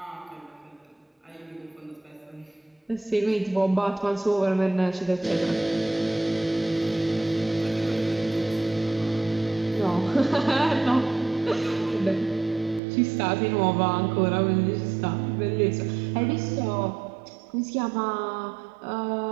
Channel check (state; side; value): drops out; left; at 12.8 s